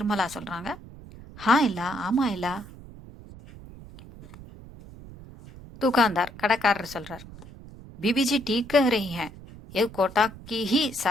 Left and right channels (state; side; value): noise; right; rumble, 17 dB below the sound